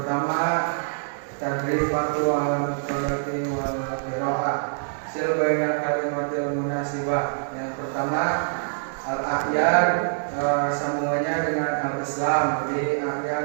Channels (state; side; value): silent; left; digital silence